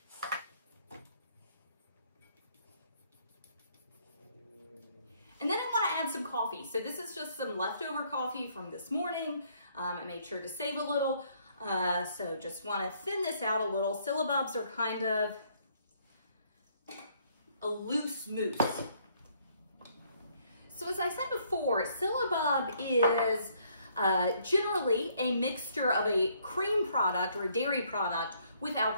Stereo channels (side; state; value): both; inverted; correlation -0.67